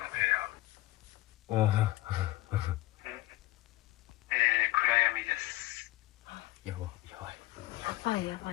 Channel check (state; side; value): quieter; right; 17.4 dB